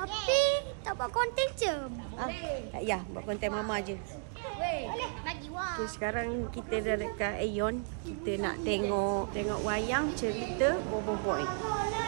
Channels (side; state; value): left; silent; 55 dB below the other